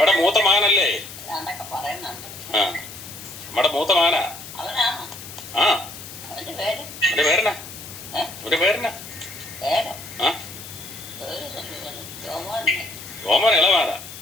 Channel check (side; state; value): left; noise; hiss, 13 dB below the sound